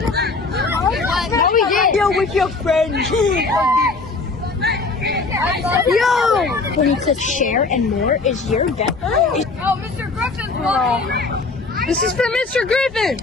What we did? Yo, with your friends. Yo! When it says share and more is your death. Oh, Mr. Griffin's one. This is for Mr. Griffin.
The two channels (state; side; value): quieter; right; 3.9 dB